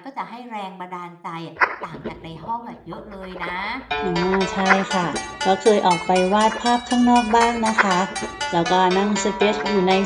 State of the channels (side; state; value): both; identical; correlation 1.00